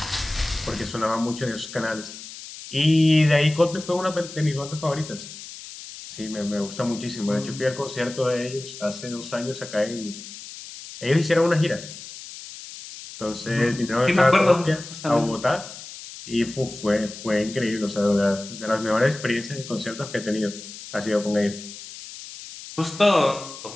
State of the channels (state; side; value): noise; left; hiss, 13 dB below the sound